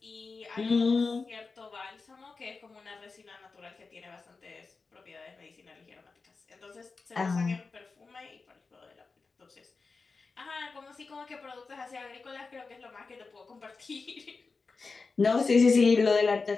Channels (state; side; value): quieter; right; 4.3 dB